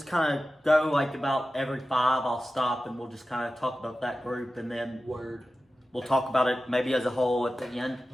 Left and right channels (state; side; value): normal; both; correlation 0.94